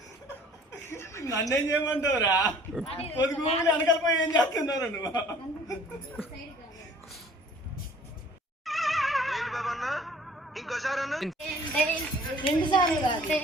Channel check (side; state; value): both; normal; correlation 0.52